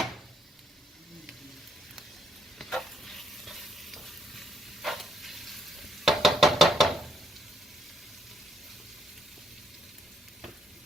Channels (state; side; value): normal; both; correlation 0.74